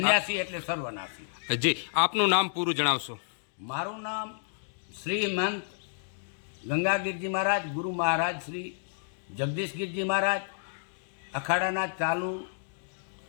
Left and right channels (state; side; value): silent; right; digital silence